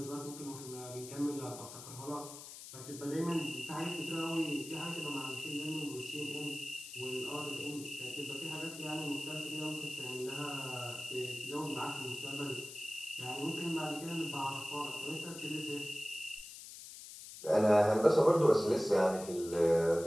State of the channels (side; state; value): left; noise; hiss, 13 dB below the sound